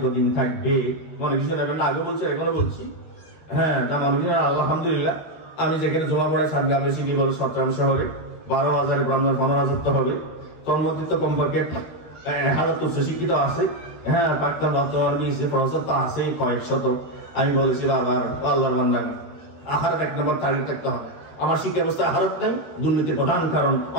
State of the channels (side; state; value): right; late; 13 ms